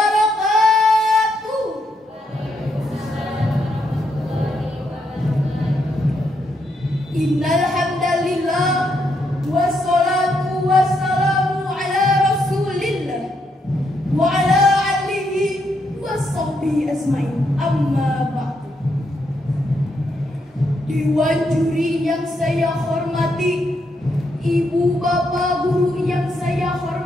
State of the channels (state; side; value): normal; both; correlation 0.78